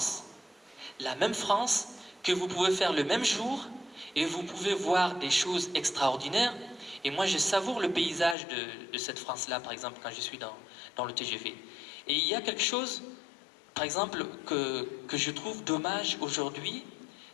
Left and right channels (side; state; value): right; drops out; at 8.3 s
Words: La même France que vous pouvez faire le même jour et vous pouvez voir des choses extraordinaires. Et moi, je savoure le paysage de cette France-là, par exemple, quand je suis dans le TGV. Et il y a quelque chose, par exemple, que je trouve dommage aujourd'hui,